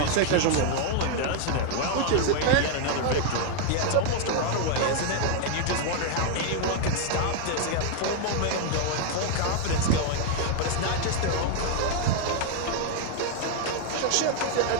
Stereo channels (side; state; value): both; different; correlation 0.00